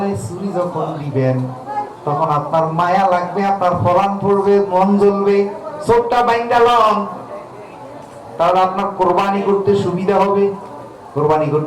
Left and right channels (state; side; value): identical; both; correlation 1.00